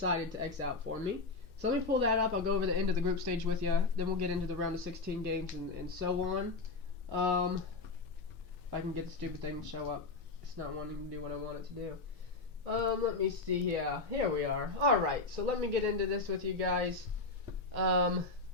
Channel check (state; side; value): quieter; right; 3.7 dB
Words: to X out for me. So let me pull that up. I'll go over the end of the group stage with you. Then we'll get into the round of 16 games and so on. If I can get the stupid thing to show up. It's not wanting to do what I want it to do. Let me see here. Here we are. Alright, so let me get into this with you guys.